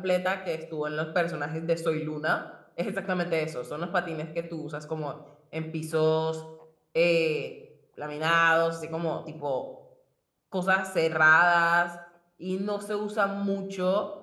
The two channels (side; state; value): both; identical; correlation 1.00